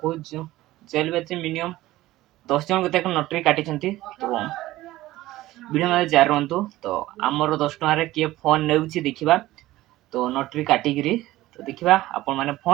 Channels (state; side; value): quieter; left; 16.6 dB